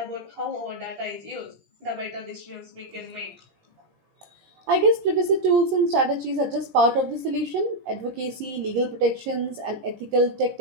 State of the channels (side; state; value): left; late; 17 ms